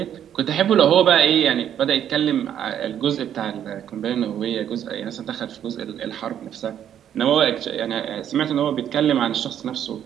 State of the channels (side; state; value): left; quieter; 9.9 dB